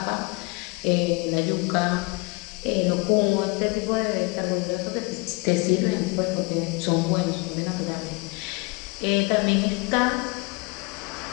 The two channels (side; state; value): right; quieter; 28.8 dB